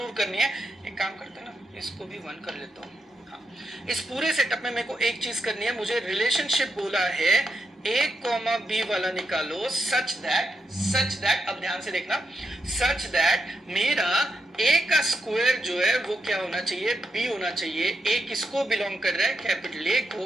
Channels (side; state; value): both; normal; correlation 0.84